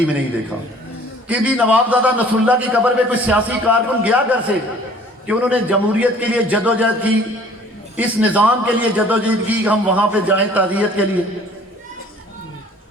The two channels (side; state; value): both; normal; correlation 0.52